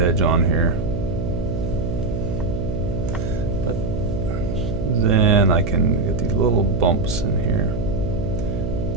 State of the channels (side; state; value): right; noise; hum, 3 dB below the sound